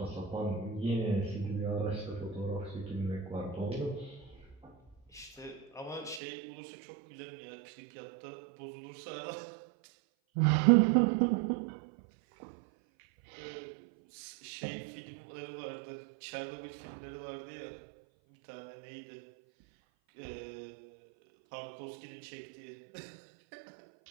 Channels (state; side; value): drops out; left; at 6.2 s